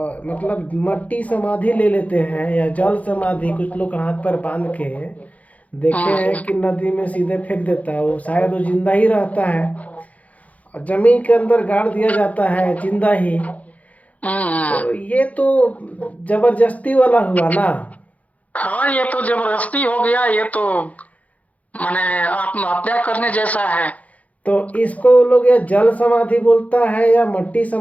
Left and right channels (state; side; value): late; right; 0.070 ms